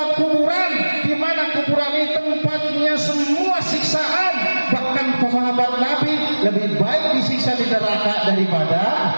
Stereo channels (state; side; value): inverted; both; correlation -1.00